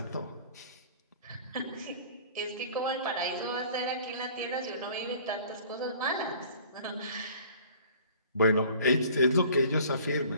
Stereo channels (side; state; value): both; inverted; correlation -0.50